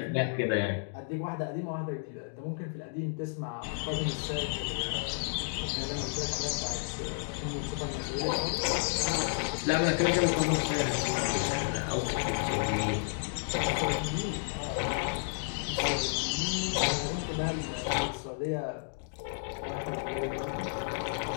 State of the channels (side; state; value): right; silent; digital silence